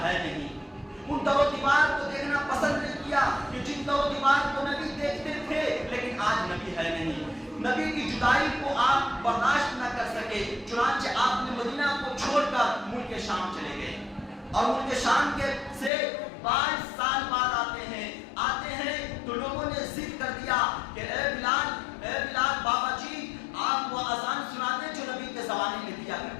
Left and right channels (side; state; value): right; drops out; at 15.9 s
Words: ہے نہیں. ان در و دیوار کو دیکھنا پسند نہیں کیا کہ جن در و دیوار کو نبی دیکھتے تھے لیکن آج نبی ہے نہیں. نبی کی جدائی کو آپ برداشت نہ کر سکے, چنانچہ آپ نے مدینہ کو چھوڑ کر ملک شام چلے گئے. اور ملک شام کے سے 5 سال بعد آتے ہیں تو لوگوں نے ضد کر دیا کہ اے بلال بابا جی آپ وہ اذان سنا دیں جو نبی کے زمانے میں دیا